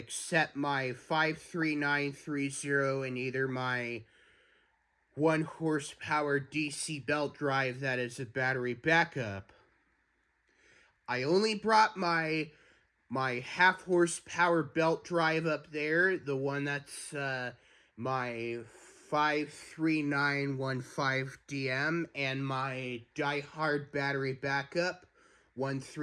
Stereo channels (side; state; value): both; identical; correlation 1.00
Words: my 53930 and either my 1 horsepower DC belt drive that is a battery backup. I only brought my half horsepower belt drive up there, the one that's my 53915DM, and my diehard battery backup